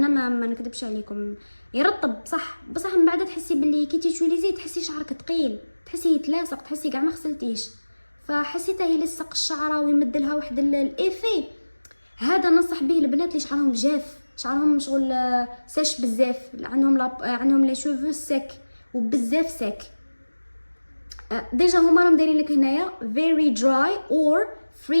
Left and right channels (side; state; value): both; inverted; correlation -1.00